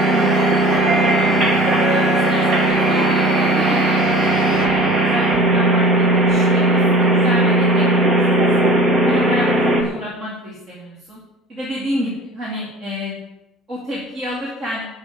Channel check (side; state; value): both; normal; correlation 0.42